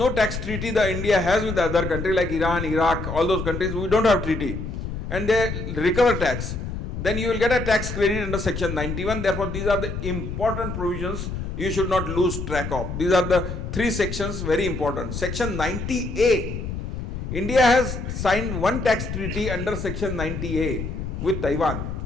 tax treaty the India has with the other country like Iran, Iraq, all those countries, we don't have treaty, and they recover tax, then you will get a tax credit under section 91. Therefore, these are the important provisions you should not lose track of. These are the three sections, very important. Section 90A, India has signed one tax treaty under section 90A with Taiwan.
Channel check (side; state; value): left; noise; rumble, 5 dB below the sound